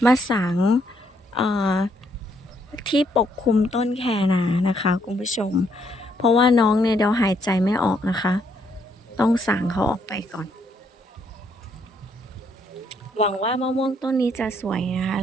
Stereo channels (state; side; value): normal; both; correlation 0.71